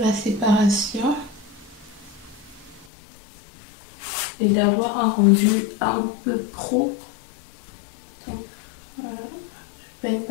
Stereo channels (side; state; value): right; drops out; at 2.9 s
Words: séparation. Et d'avoir un rendu un peu pro. Donc voilà, je ne peigne